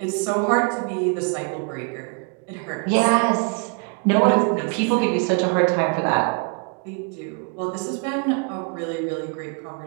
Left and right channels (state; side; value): quieter; left; 37.6 dB